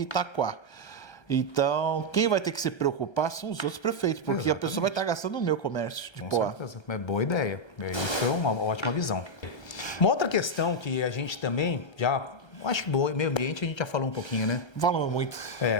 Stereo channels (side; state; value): right; late; 1.3 ms